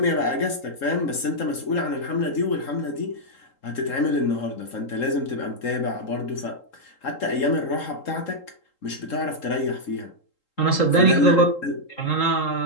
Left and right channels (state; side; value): late; right; 3.8 ms